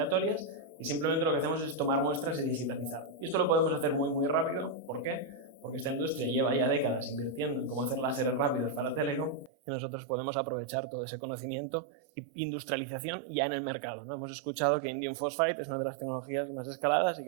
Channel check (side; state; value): left; drops out; at 9.5 s